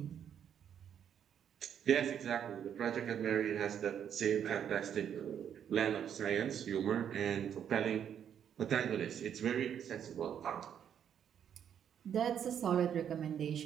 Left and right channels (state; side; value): quieter; left; 8.9 dB